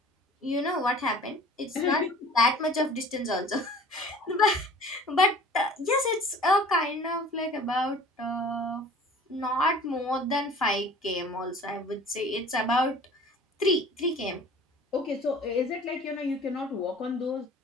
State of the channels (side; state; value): both; normal; correlation 0.47